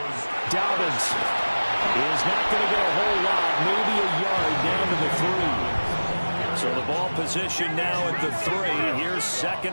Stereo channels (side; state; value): both; inverted; correlation -1.00